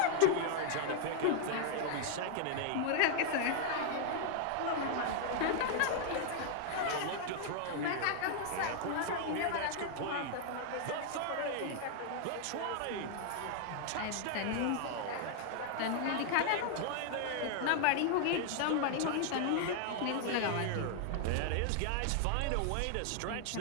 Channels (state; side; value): different; both; correlation 0.00